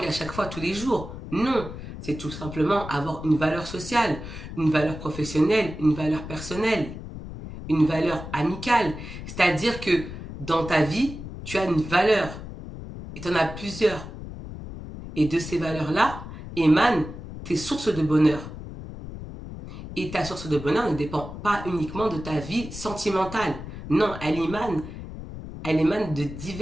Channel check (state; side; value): noise; left; rumble, 11 dB below the sound